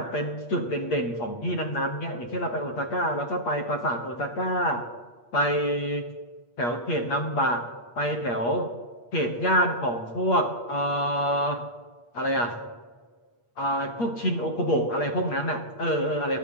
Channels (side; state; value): right; late; 8.5 ms